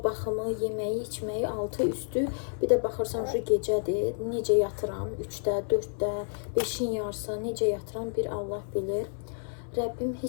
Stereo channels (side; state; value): right; silent; 58 dB below the other